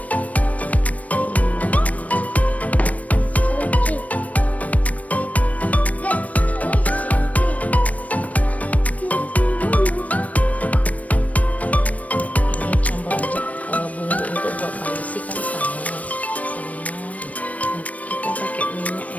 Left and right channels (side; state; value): right; late; 0.069 ms